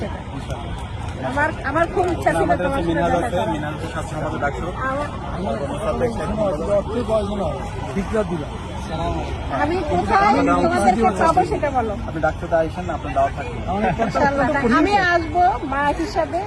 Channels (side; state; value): both; identical; correlation 1.00